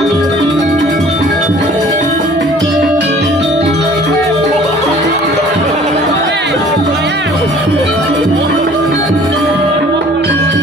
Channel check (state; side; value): normal; both; correlation 0.51